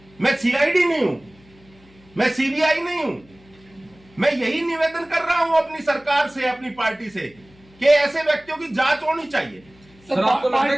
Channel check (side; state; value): left; noise; hum, 28 dB below the sound